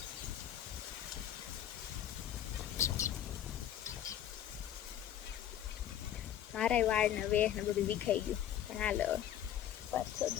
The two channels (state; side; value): quieter; right; 10.8 dB